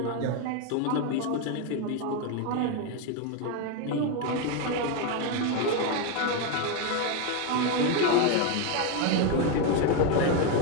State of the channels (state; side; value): different; both; correlation 0.02